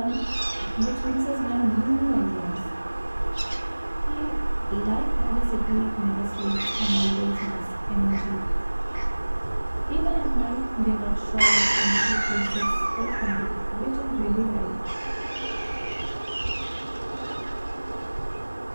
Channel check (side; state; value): both; inverted; correlation -1.00